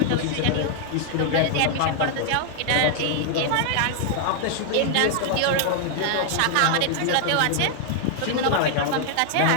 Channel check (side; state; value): both; different; correlation 0.00